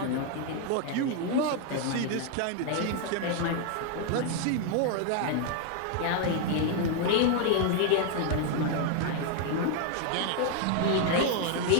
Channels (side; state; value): both; different; correlation 0.00